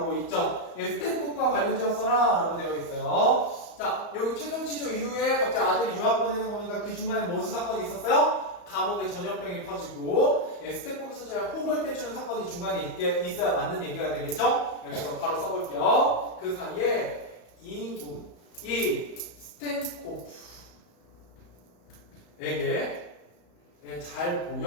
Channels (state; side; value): late; right; 34 ms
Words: 있죠. 예, 스텝북과 관련지었어라 라고 되어 있어요. 자, 여기 최종 취조 이후에 갑자기 아들이 유학 보내는 거니까 그 중간에 무슨 사건이 있었어요? 감옥에 전염병이 퍼지고 스테코프 소재와 혹을 떼주는 사건이 중간에 있어야 맞는 얘기가 되겠죠? 그래서 바로 써볼게요. 그 사이에 이 스테코프에게 잘